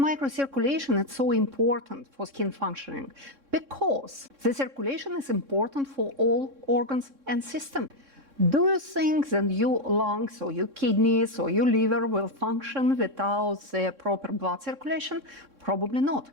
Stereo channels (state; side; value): late; left; 3.6 ms